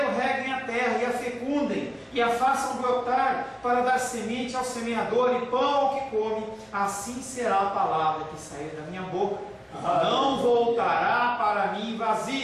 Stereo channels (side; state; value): both; identical; correlation 1.00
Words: reguem a terra e a fecundem, e a façam brotar, para dar semente ao semeador e pão ao que come, assim será a palavra que sair da minha boca. não voltará para mim